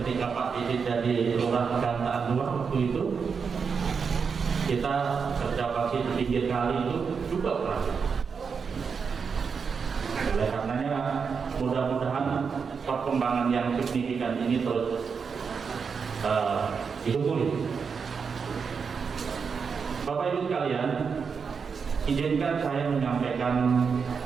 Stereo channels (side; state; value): left; quieter; 5.8 dB